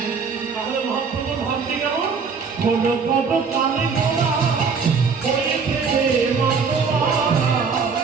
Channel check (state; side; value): quieter; left; 5.4 dB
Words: তাহলে মহাপ্রভুর ভাবটি কেমন? কোনো কত কানে গোড়া হয়ে ফেলে মাতোয়ারা,